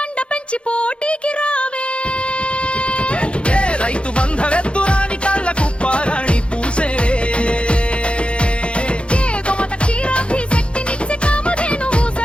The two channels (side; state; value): right; late; 0.058 ms